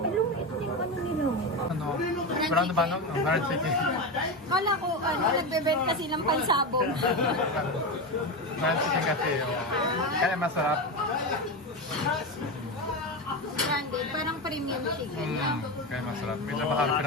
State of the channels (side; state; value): both; normal; correlation 0.17